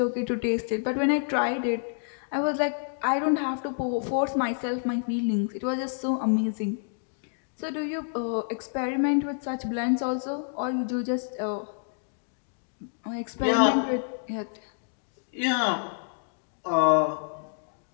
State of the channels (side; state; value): right; silent; digital silence